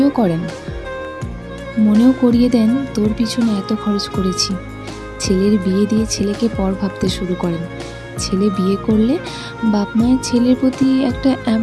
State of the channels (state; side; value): identical; both; correlation 1.00